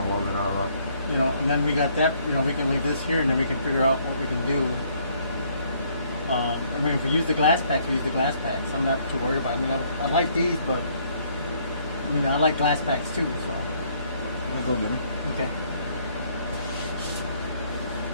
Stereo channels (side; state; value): both; inverted; correlation -0.66